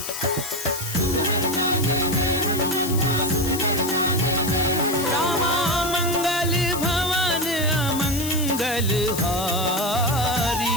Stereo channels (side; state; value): left; noise; hiss, 7 dB below the sound